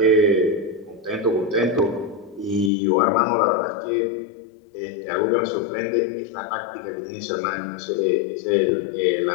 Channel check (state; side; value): drops out; right; at 2.7 s